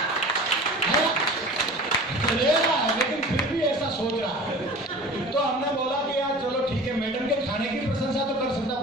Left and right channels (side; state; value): both; normal; correlation 0.39